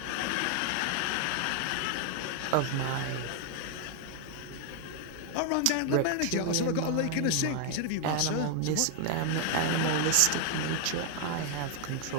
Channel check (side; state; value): both; different; correlation 0.00